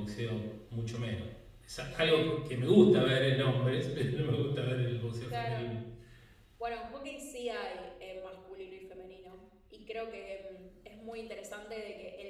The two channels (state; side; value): identical; both; correlation 1.00